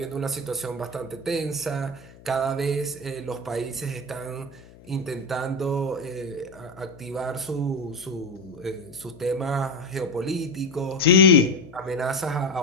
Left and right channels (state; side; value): noise; left; hum, 22 dB below the sound